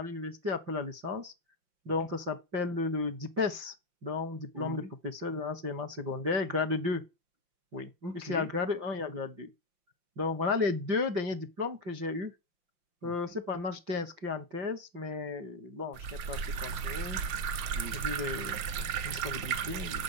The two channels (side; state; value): left; late; 5.7 ms